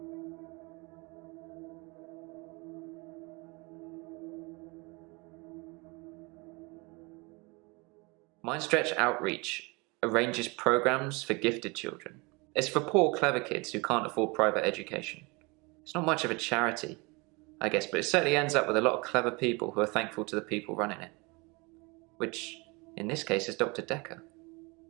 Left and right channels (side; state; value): left; quieter; 27.5 dB